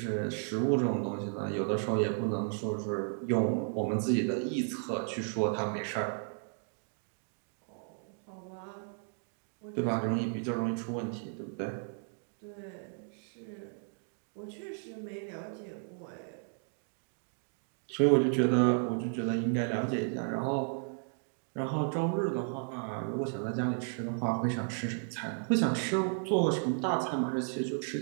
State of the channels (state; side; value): silent; left; 55 dB below the other